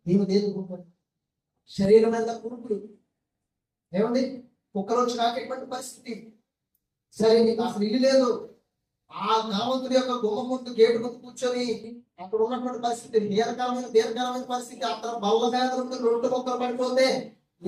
ఏమి దేదుకుంటాడు? శరీరం మీద కురుకుడు ఏమండి? కుక్కలు వచ్చి నాకేటువంటి పరిస్థితి. సరే, నీకు అసలు ఇల్లు లేదు. ఆ ధనవంతుడి యొక్క గుమ్మ ముందు గేటు ముందు కూర్చొని అక్కడ ఉన్నటువంటి పరిస్థితి దీర్ఘకాలమైన పరిస్థితి. అక్కడ బల్ల మీద నుండి 2 మొక్కలు పడిపోతే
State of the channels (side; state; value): both; identical; correlation 1.00